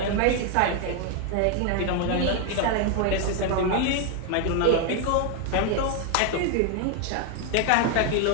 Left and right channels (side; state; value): both; different; correlation 0.01